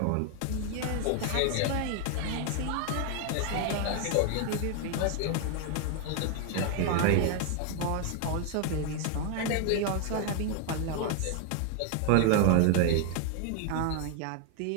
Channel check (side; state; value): both; different; correlation 0.00